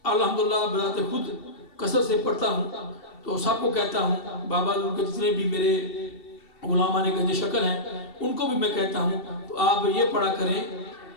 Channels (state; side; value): late; right; 2.7 ms